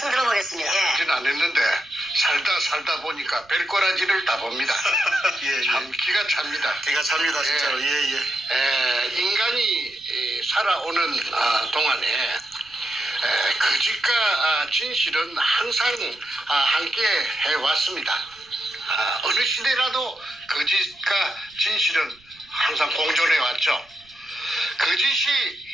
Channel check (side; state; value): right; noise; rumble, 29 dB below the sound